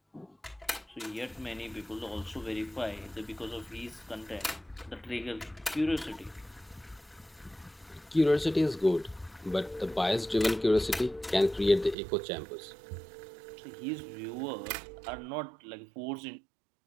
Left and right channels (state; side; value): drops out; left; at 12.0 s